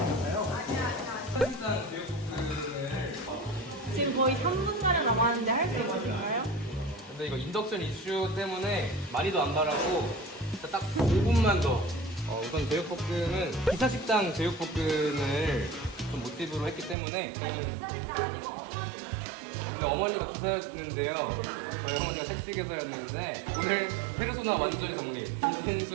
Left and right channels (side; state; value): left; drops out; at 16.9 s